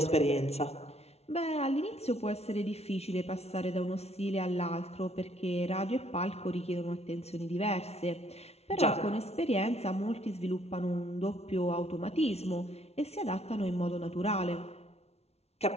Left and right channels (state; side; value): late; right; 0.31 ms